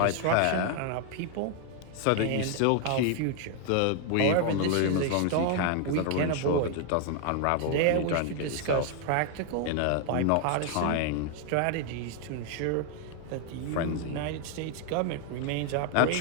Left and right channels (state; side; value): different; both; correlation 0.00